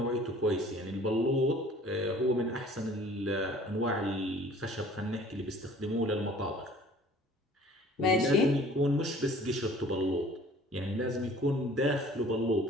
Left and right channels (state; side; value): normal; both; correlation 0.51